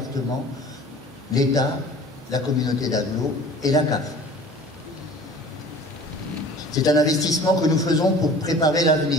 l'État, la communauté d'agglo et la CAF. C'est un investissement que nous faisons pour préparer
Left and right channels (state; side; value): normal; both; correlation 0.45